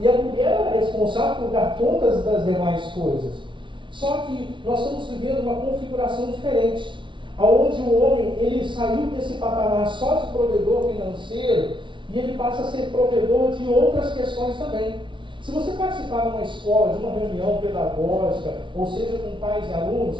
a mulher era responsável por dar contas das demais coisas. Só que nós estamos vivendo uma configuração diferente, onde o homem ele saiu desse patamar só de provedor financeiro e ele passa a ser provedor de outras questões também. Se você participar de uma escola, de uma reunião pedagógica, ou seja, com pais e alunos,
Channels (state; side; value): late; left; 0.24 ms